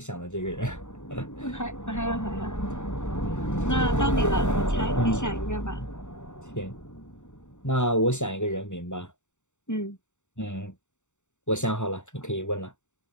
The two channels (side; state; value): right; late; 0.84 ms